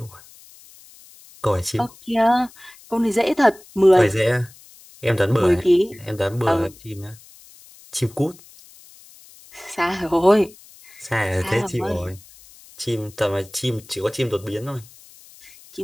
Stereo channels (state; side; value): noise; left; hiss, 23 dB below the sound